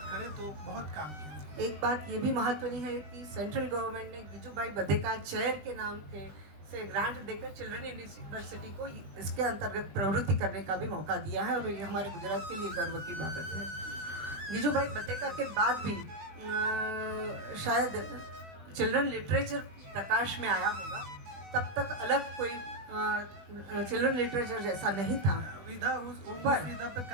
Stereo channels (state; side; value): late; left; 20 ms